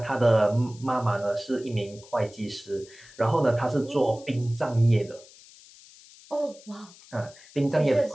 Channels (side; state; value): left; noise; hiss, 22 dB below the sound